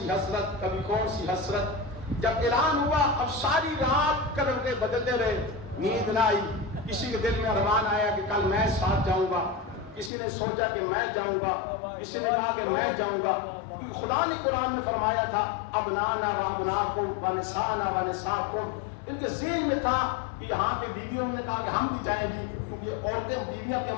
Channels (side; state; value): right; drops out; at 10.1 s